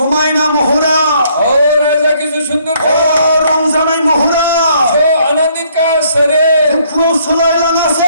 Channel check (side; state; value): both; inverted; correlation -0.66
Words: महरा और राजा की जो औ सुंदरता रंजानाय महरा जो आनंदित का शरीर दुखुआव